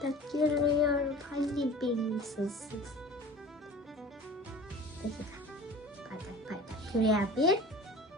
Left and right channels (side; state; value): both; normal; correlation 0.40